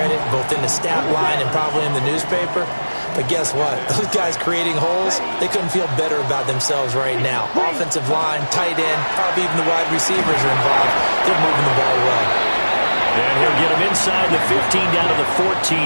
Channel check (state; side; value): inverted; both; correlation -1.00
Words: both in the stat line and probably in the newspaper. But guess what? Those guys creating holes, they couldn't feel better about themselves right now. Offensive line, tight end, probably even the wide receivers are involved. They're moving the ball well. And he'll get him inside the 15 down to the